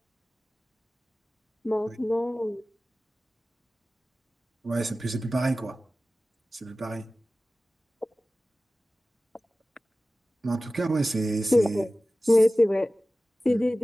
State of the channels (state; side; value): normal; both; correlation 0.96